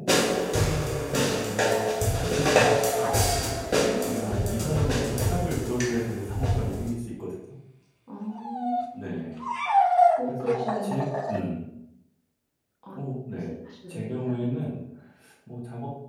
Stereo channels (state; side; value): identical; both; correlation 1.00